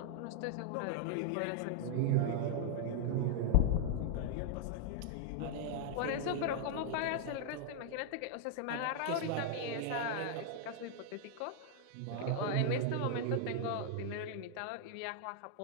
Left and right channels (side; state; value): both; different; correlation -0.01